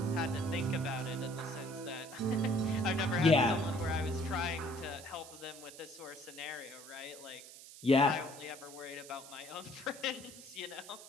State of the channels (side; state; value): right; noise; hiss, 16 dB below the sound